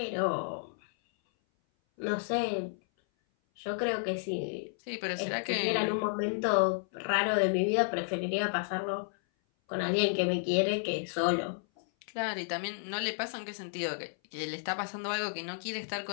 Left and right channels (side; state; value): right; silent; 56 dB below the other